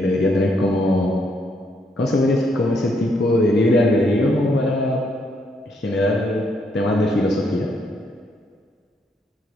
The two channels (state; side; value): normal; both; correlation 0.74